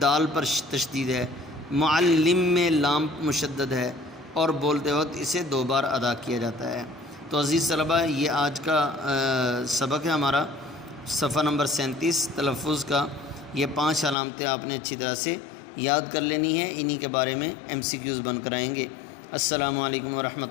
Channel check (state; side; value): drops out; right; at 14.2 s